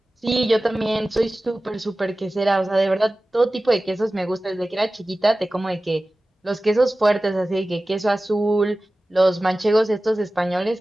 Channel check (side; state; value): both; normal; correlation 0.96